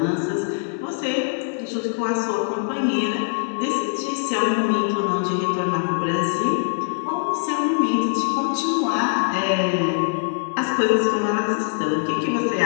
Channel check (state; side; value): silent; right; digital silence